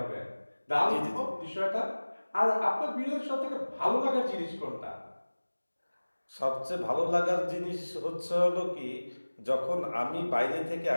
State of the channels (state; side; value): inverted; both; correlation -1.00